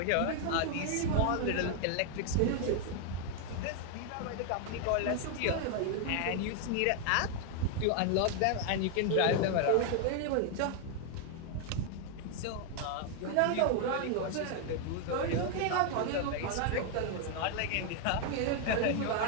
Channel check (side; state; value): both; different; correlation 0.00